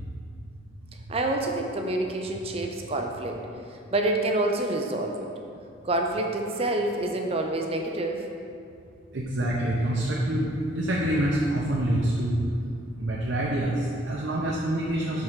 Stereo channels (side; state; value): both; normal; correlation 0.50